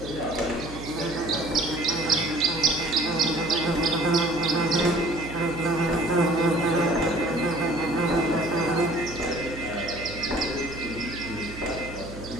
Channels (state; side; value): noise; right; hum, 13 dB below the sound